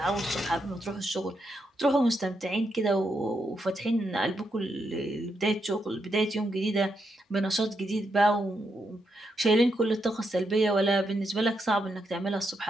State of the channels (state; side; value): normal; both; correlation 0.81